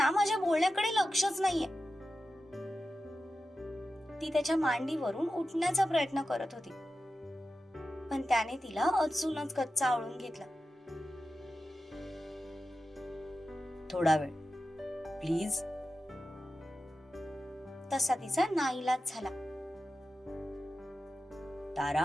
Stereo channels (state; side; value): normal; both; correlation 0.92